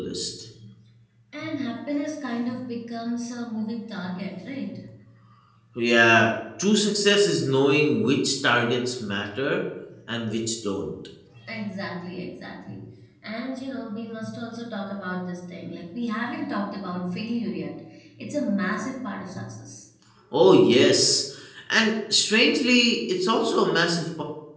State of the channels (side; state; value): both; identical; correlation 1.00